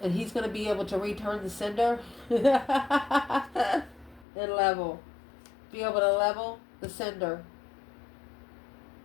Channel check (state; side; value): drops out; right; at 4.2 s